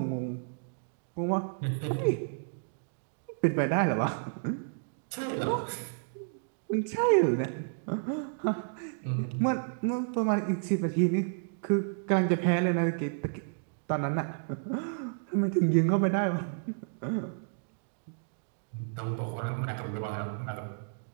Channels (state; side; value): silent; left; digital silence